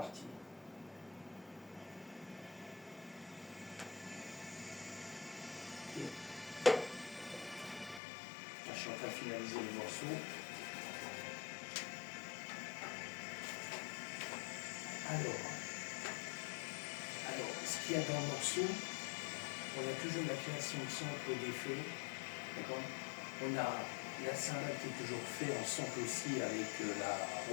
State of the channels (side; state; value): right; drops out; at 8.0 s